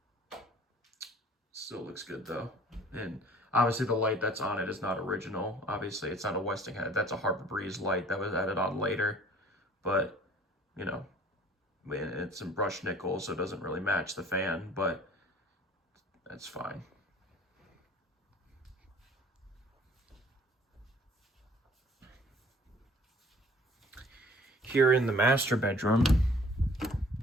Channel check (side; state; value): both; normal; correlation 0.53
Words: still looks good though. And obviously the light that's on it is not original. Obviously it's not a Westinghouse. That's a Harbor Breeze light that was added on later. But, it's in brushed nickel, so it doesn't really match the fan, but that's fine. here in the master bedroom,